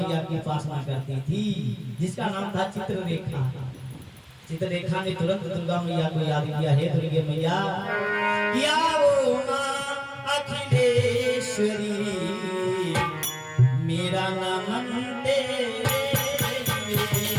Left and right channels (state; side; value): identical; both; correlation 1.00